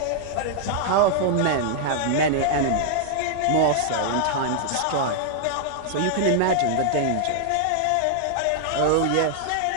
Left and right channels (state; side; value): different; both; correlation -0.01